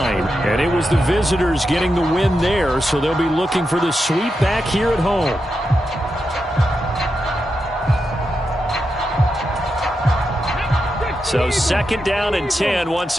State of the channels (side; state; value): both; normal; correlation 0.87